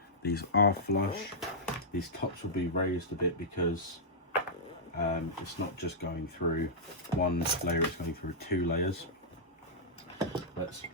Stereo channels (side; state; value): both; normal; correlation -0.11